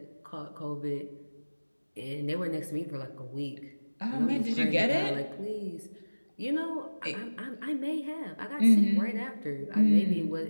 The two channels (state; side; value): inverted; both; correlation -1.00